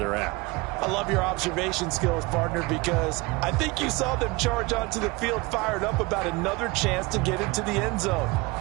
at. I love your observation skills, partner, because I think you saw them charge onto the field fired up about another chance to get into the end zone.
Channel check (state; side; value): quieter; left; 23.8 dB